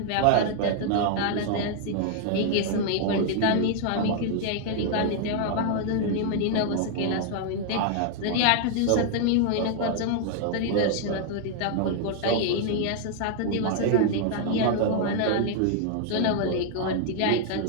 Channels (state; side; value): different; both; correlation 0.00